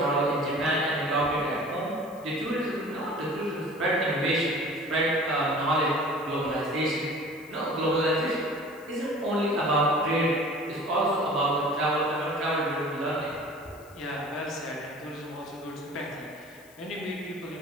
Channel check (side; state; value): left; noise; hiss, 25 dB below the sound